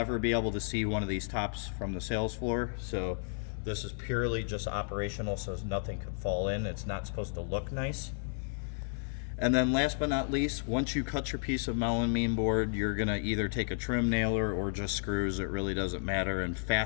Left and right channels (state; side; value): silent; right; digital silence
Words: be able to see one of these tops from the sales floor. So this is purely just operational, so nothing could fall in. It's not supposed to look nice. And then last but not least, once you cut your piece of melamine board, you're gonna either take a trim nailer or just screws, it really doesn't matter, and